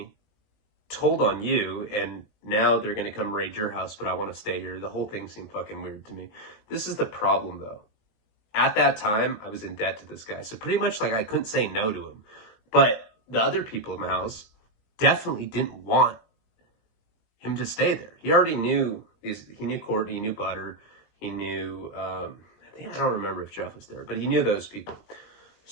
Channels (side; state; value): right; late; 19 ms